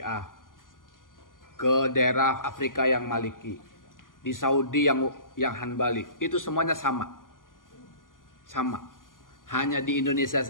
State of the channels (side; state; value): right; late; 0.90 ms